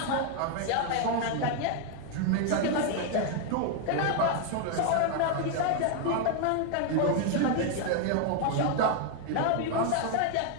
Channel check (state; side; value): different; both; correlation 0.00